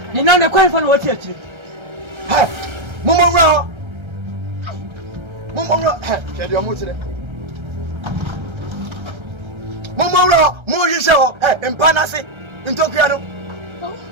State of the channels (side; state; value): left; late; 1.3 ms